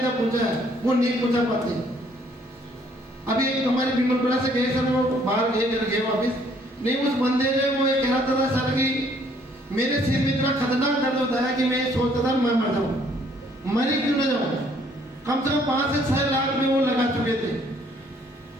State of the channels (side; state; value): both; normal; correlation 0.63